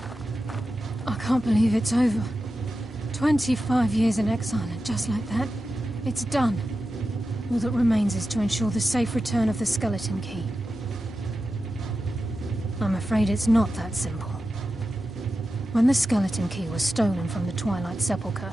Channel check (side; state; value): both; normal; correlation 0.91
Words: I can't believe it's over. 25 years in exile, and just like that, it's done. All that remains is to ensure the safe return of the skeleton key. I'm afraid it's not that simple. When the skeleton key was stolen from the Twilight Sepulchre,